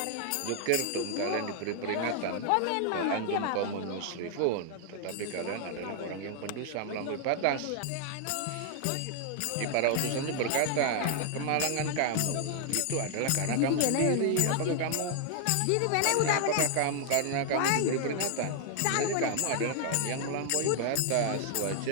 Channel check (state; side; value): different; both; correlation 0.00